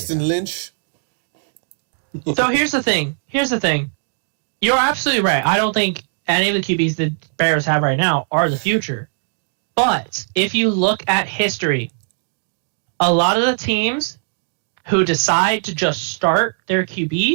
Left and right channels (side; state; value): left; silent; digital silence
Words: Lynch. So here's the thing. You're absolutely right. I don't think any of the QBs the Bears have right now are the future. But if you look at history, a lot of the teams who decide to just start their